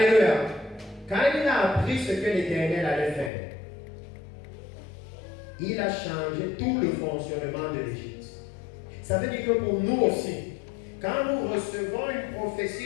Quand il a appris ce que l'Éternel allait faire, il a changé tout le fonctionnement de l'Égypte. Ça veut dire que pour nous aussi, quand nous recevons une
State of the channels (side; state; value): right; drops out; at 3.3 s